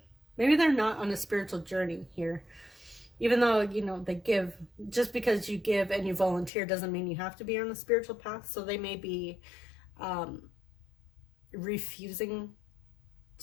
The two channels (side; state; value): right; drops out; at 6.5 s